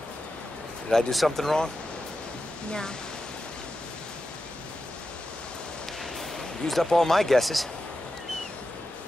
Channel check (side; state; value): both; normal; correlation 0.90